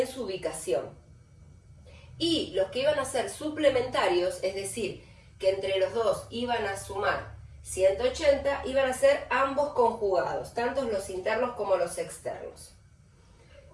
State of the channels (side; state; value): both; identical; correlation 1.00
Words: su ubicación. Y los que iban a ser suplementarios, es decir, que entre los dos iban a sumar 180, iban a ser ambos conjugados, tanto los internos como los externos.